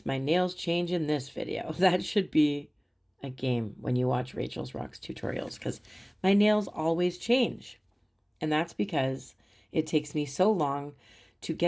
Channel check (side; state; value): both; identical; correlation 1.00